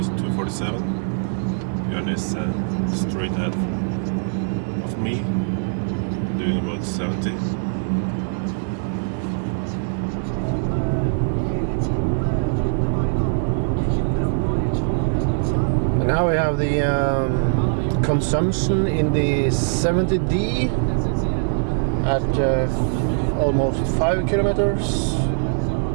247. Björn is straight ahead of me, doing about 70. And now we have the consumption in the 70D at almost 5 kilometers.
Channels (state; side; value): silent; left; 60 dB below the other